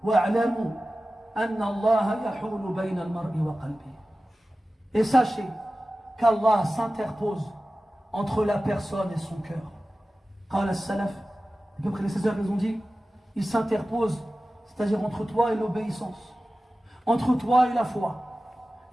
Et sachez qu'Allah s'interpose entre la personne et son cœur. قال السلف, les prédécesseurs ils ont dit, il s'interpose, c'est-à-dire entre toi et l'obéissance, entre toi et la foi.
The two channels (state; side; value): normal; both; correlation 0.95